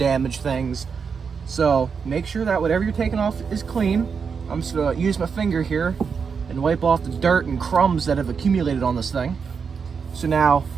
things. So make sure that whatever you're taking off is clean. I'm just gonna use my finger here and wipe off the dirt and crumbs that have accumulated on this thing. So now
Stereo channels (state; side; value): quieter; left; 5.9 dB